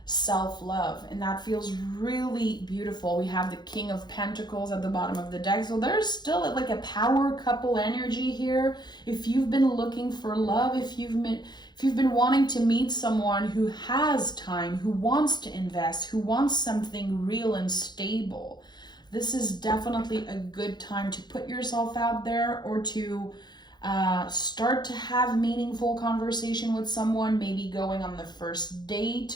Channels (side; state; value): right; late; 0.21 ms